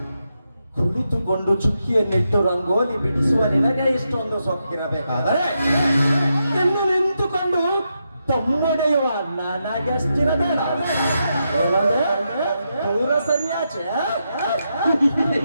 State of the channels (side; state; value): both; inverted; correlation -0.84